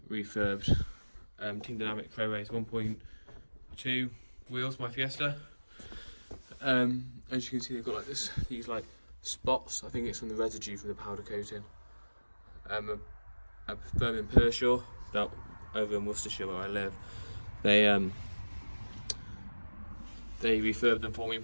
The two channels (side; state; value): both; inverted; correlation -1.00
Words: refurbed Team Dynamic Pro Race 1.2 wheels, my Fiesta. As you can see, they've got like these like spots. I think it's from the residue from the powder coating. A firm in Pershore, that over in Worcestershire where I live. They refurbed them for me and